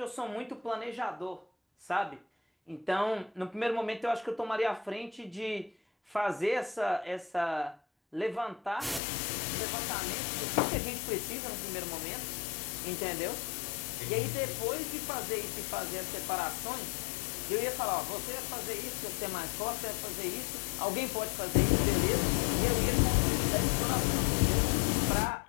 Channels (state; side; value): drops out; right; at 9.0 s